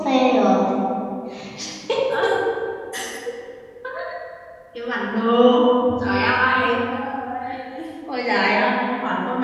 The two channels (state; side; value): identical; both; correlation 1.00